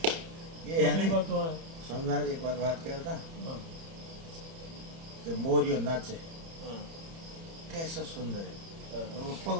ये है नहीं बात तो है। स्वामी महाराज एक बार बात करता हाँ कि मोरियो नाचे हाँ कैसा सुंदर है, हाँ, तो वो पग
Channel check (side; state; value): left; late; 30 ms